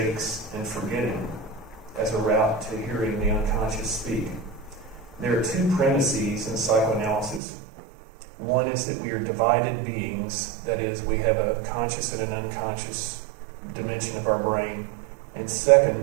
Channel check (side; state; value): left; drops out; at 7.4 s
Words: and forgetting as a route to hearing the unconscious speak. There are 2 premises in psychoanalysis. One is that we are divided beings, that is, we have a conscious and an unconscious dimension of our brain. And second,